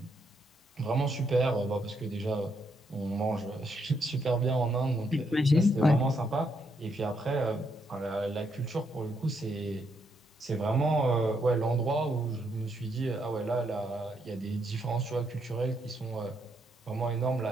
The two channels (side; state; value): both; normal; correlation 0.76